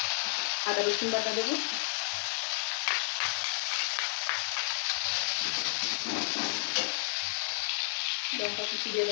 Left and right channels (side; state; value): right; silent; 57 dB below the other